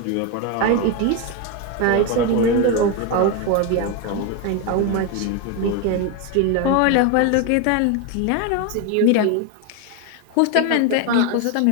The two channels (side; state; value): both; different; correlation 0.02